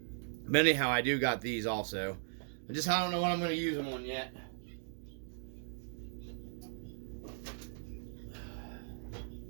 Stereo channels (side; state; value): left; silent; digital silence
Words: anyhow, I do got these also. I don't know what I'm going to use them on yet.